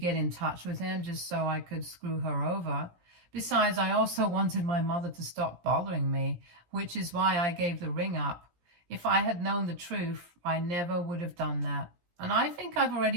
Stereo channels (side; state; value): left; late; 17 ms